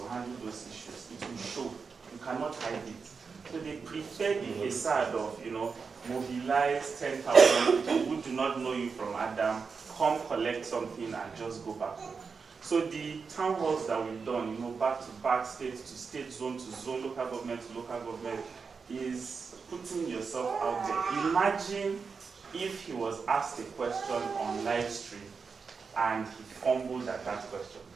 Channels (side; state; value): left; quieter; 5.2 dB